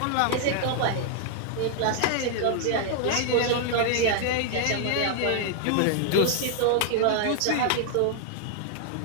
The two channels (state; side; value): different; both; correlation 0.00